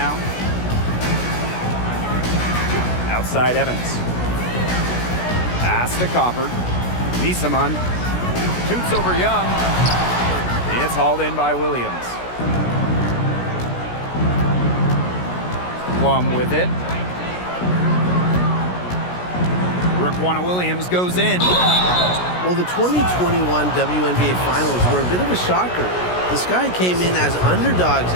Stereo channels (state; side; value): late; right; 17 ms